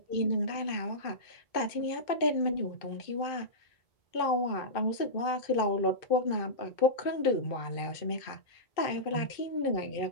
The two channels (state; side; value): late; right; 2.5 ms